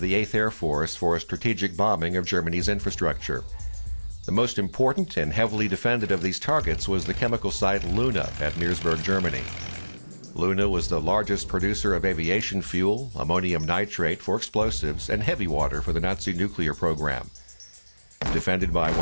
the 8th Air Force for strategic bombing of Germany's infrastructure. The most important and heavily defended of these targets was the chemical site Luna at Meresburg, Germany. Luna was the largest producer of aviation fuel, ammonium nitrate for explosives, and heavy water for the Nazi nuclear program. Defended by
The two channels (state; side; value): inverted; both; correlation -1.00